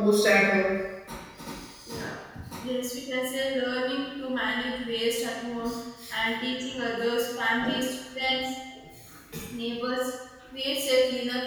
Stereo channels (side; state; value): both; identical; correlation 1.00